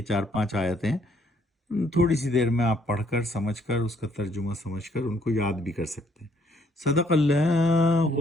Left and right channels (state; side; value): normal; both; correlation 0.67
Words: 4-5 آیتیں تھوڑی سی دیر میں آپ پڑھ کر سمجھ کر اس کا ترجمہ سمجھ کر ان کو یاد بھی کر سکتے ہیں۔ صدق اللہ